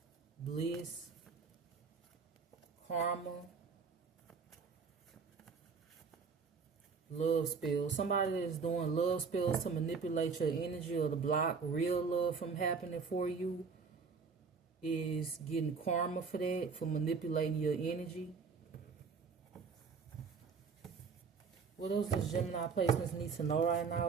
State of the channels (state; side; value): quieter; left; 5.3 dB